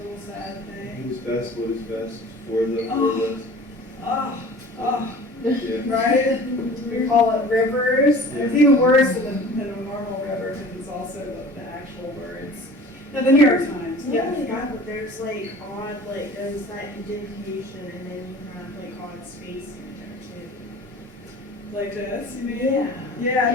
sad thing. Who's best? What is best for the us? Yeah. Right? We call it rivers. It's even worse than a normal river because it's also the actual words. Now, the New York Times. Yeah, Yes. but there's like odd, like there's that indentation and then you have like odd spacing in there too. Like this, you mean? Yeah. Yeah,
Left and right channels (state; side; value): normal; both; correlation 0.43